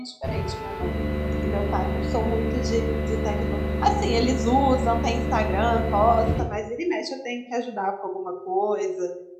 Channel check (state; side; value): identical; both; correlation 1.00